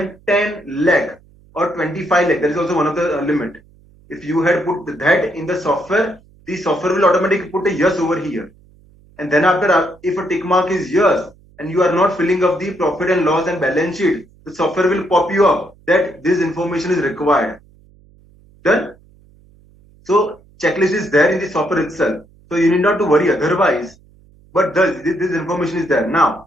10 lakh or 25 lakh, that is also one of the limit. If you had put that in the software will automatically put a yes over here. And then after, if a tick mark is yes, and you are not filling up the profit and loss and balance sheet, the software will pop you up that this information is required. Done? So checklist is there in the software itself. So you need not to worry otherwise. But this information is there. Now,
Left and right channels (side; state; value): right; noise; hum, 28 dB below the sound